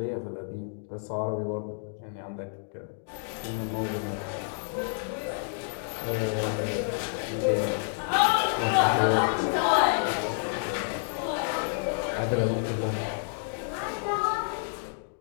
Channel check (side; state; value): right; silent; 59 dB below the other